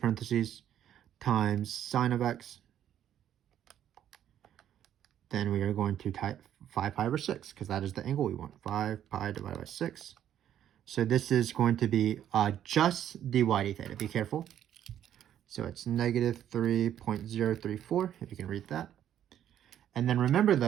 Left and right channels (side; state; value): left; quieter; 10.6 dB